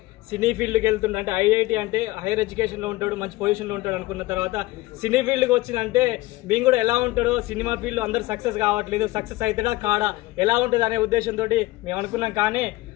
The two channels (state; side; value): quieter; right; 19.1 dB